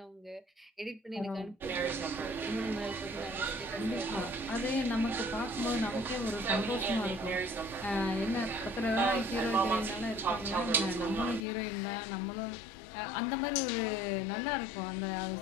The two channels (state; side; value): drops out; right; at 11.5 s